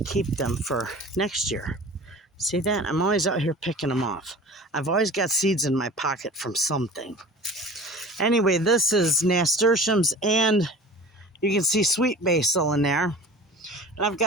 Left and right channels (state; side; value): normal; both; correlation 0.39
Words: them for next year. See that? I'm always out here picking them off. I've always got seeds in my pocket from something. Anyway, this is nasturtiums, and you can see sweet basil in there. And I've